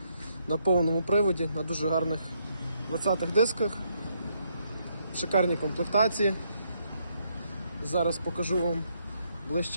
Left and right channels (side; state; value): both; inverted; correlation -0.75